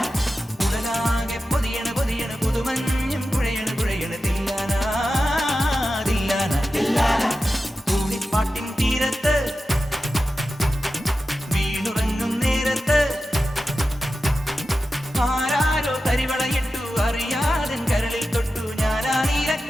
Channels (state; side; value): normal; both; correlation 0.92